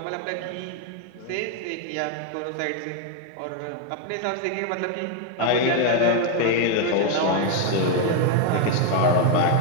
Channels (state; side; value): different; both; correlation 0.01